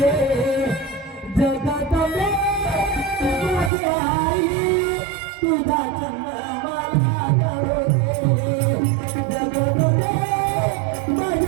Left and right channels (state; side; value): drops out; left; at 3.7 s